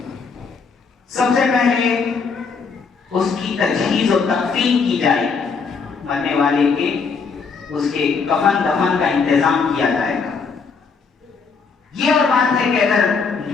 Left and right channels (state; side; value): quieter; right; 5.2 dB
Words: سب سے پہلے اس کی تجہیز و تکفین کی جائے، مرنے والے کے اس کے کفن دفن کا انتظام کیا جائے گا۔ یہ اور بات ہے کہ اگر